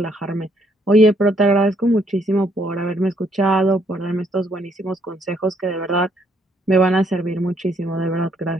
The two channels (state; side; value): normal; both; correlation 0.69